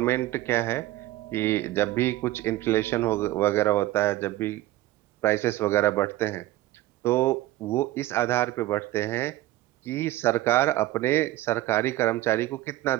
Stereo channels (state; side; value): quieter; left; 16.1 dB